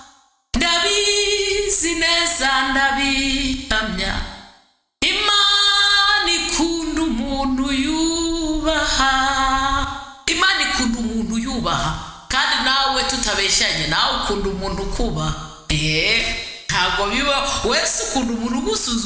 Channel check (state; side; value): identical; both; correlation 1.00